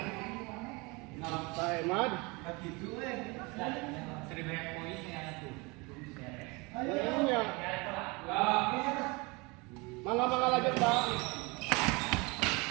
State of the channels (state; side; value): quieter; left; 26.7 dB